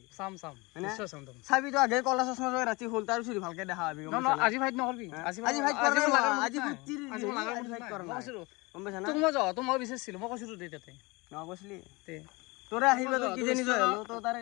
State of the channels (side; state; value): right; quieter; 25.2 dB